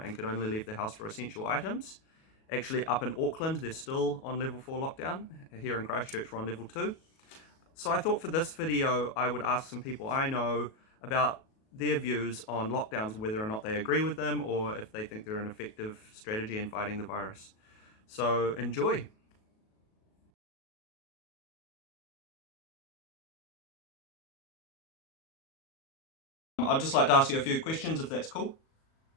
could only leave the house for essential items. Actually, up in Auckland, they're still on level 4 lockdown. Here in Christchurch, we're on level 2. So I thought for this video, I would ask some people I know about their views on lockdowns, whether or not they agree with them or if they think they're an effective strategy in fighting the virus. So enjoy. I'd just like to ask you a few questions if that's cool.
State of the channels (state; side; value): late; right; 37 ms